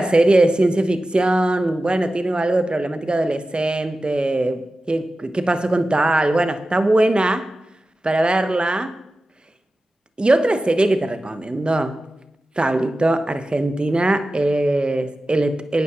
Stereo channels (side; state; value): both; normal; correlation 0.94